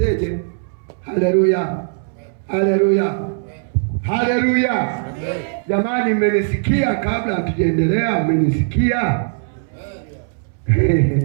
Haleluya, haleluya, haleluya. Jamani, mmenisikia? Kabla hatujaendelea, mmenisikia?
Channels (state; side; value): silent; left; 66 dB below the other